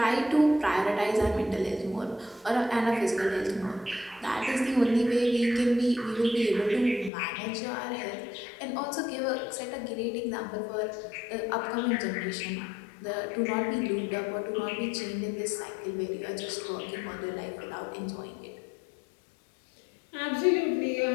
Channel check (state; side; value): drops out; right; at 7.1 s